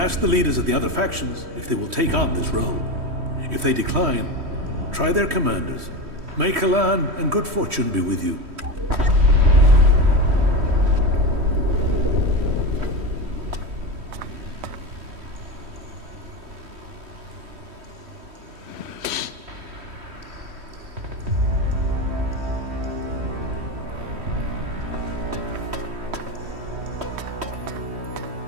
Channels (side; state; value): left; late; 3.1 ms